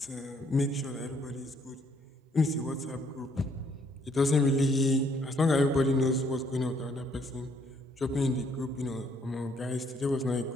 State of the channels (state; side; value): normal; both; correlation 0.67